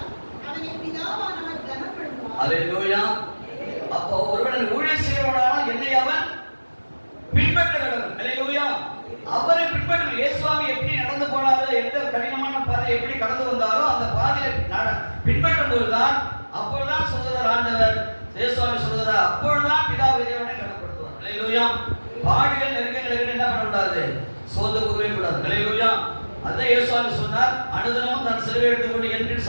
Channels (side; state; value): both; inverted; correlation -1.00